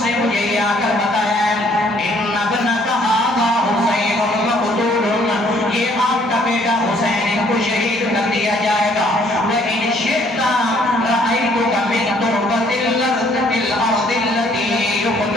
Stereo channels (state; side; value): normal; both; correlation 0.63